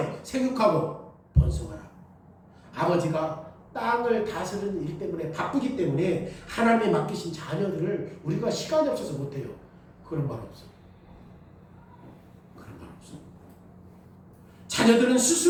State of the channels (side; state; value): both; identical; correlation 1.00